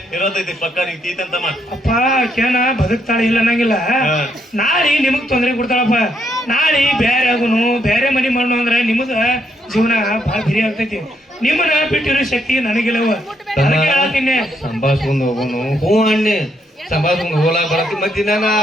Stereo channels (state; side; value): normal; both; correlation 0.74